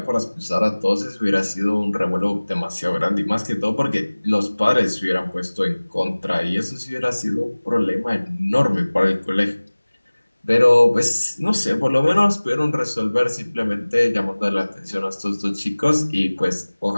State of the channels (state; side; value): inverted; both; correlation -1.00